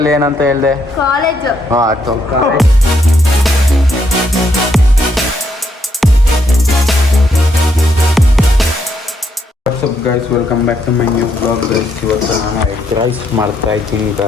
ಏನಂತ ಹೇಳಿದೆ? College. What's up guys, welcome back to my new blog guys. ಇವತ್ತು ನಾನು ಎಗ್ ರೈಸ್ ಮಾಡ್ತಾ ಇದ್ದೀನಿ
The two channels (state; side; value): normal; both; correlation 0.75